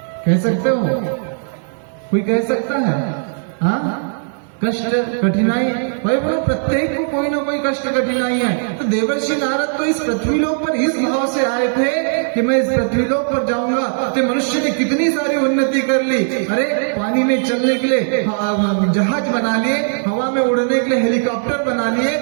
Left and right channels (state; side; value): silent; left; 61 dB below the other